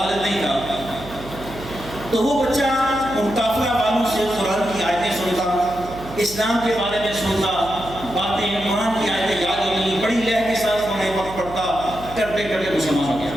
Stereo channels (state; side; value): noise; right; hum, 14 dB below the sound